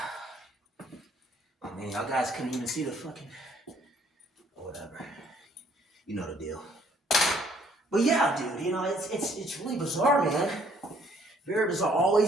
Oh man, y'all guys couldn't even see the fucking whatever. You know the deal. But yeah, dude, it's really bizarre, man. Very bizarre.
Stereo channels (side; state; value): both; normal; correlation 0.63